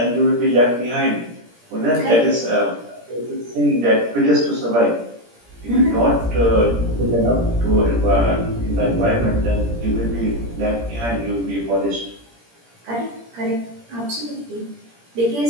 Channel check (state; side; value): late; left; 17 ms